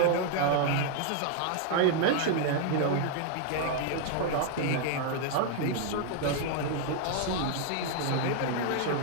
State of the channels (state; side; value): different; both; correlation 0.00